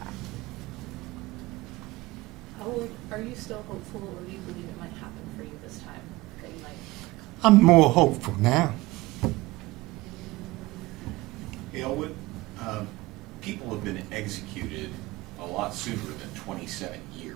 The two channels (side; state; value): left; quieter; 20.0 dB